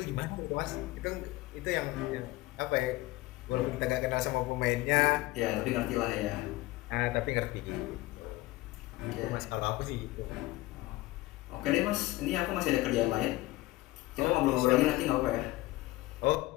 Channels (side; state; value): right; quieter; 19.1 dB